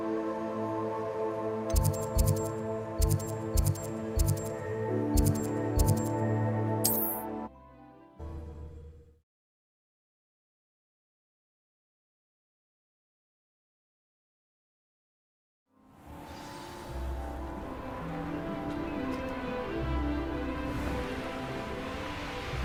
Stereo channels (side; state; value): both; identical; correlation 1.00